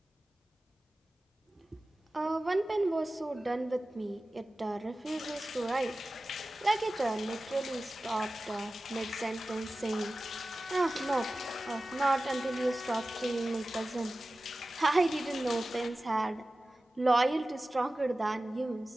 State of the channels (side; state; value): both; normal; correlation 0.96